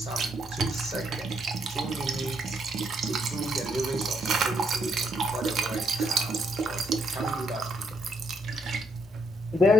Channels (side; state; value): both; normal; correlation 0.74